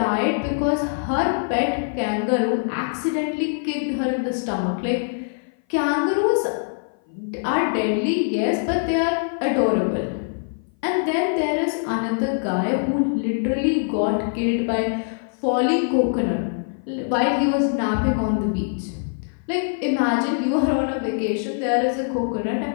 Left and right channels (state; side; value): silent; right; 57 dB below the other